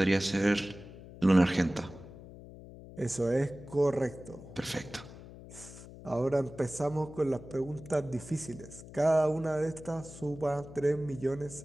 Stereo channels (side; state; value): left; noise; hum, 16 dB below the sound